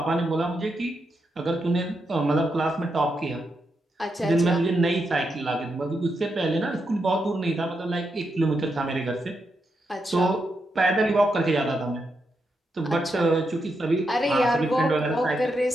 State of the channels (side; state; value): both; normal; correlation 0.83